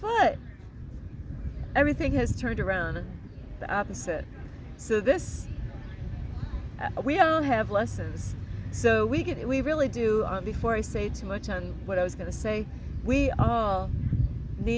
what? Everything has turned around, the opposite. So we all have lessons. So we really do. Before I say too much on what I was going to say, we all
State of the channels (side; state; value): both; identical; correlation 1.00